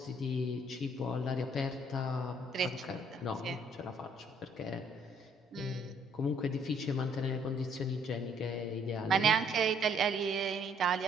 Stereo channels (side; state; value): both; normal; correlation 0.64